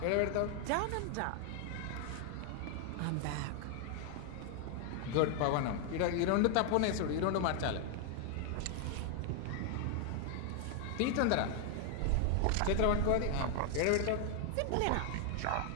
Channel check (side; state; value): both; different; correlation 0.00